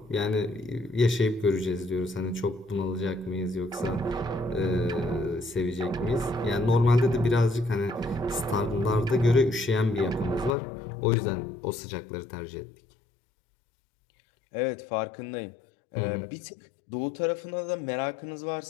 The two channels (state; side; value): drops out; right; at 10.6 s